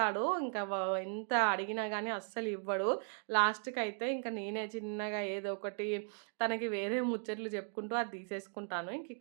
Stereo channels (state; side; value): silent; left; 53 dB below the other